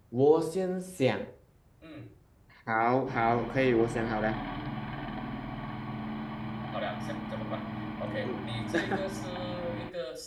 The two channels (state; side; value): identical; both; correlation 1.00